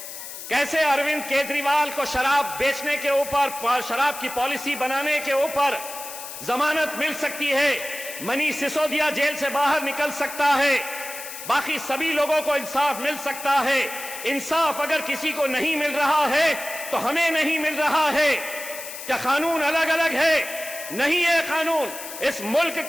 कैसे अरविंद केजरीवाल को शराब बेचने के ऊपर, शराब की पॉलिसी बनाने के ऊपर जमानत मिल सकती है, मनीष सिसोदिया जेल से बाहर निकल सकता है, बाकी सभी लोगों को इंसाफ मिल सकता है। इंसाफ अगर किसी को नहीं मिल रहा है तो हमें नहीं मिल रहा है। क्या कानून अलग अलग है? नहीं है कानून। इस मुल्क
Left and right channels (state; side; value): noise; left; hiss, 10 dB below the sound